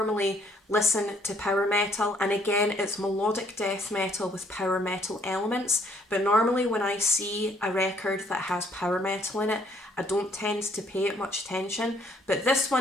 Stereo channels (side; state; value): both; normal; correlation 0.65